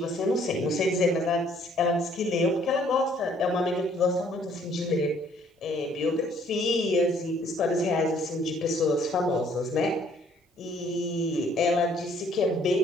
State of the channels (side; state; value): both; normal; correlation 0.62